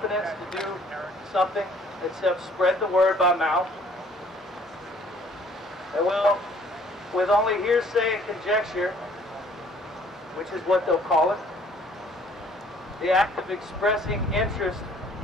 to do something except spread the word by mouth. And well, with only hearsay and conjecture, which is what they'll call it, the act of expressing interest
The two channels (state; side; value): normal; both; correlation 0.58